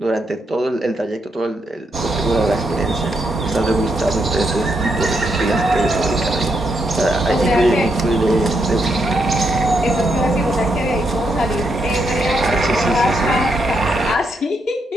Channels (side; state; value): both; normal; correlation 0.79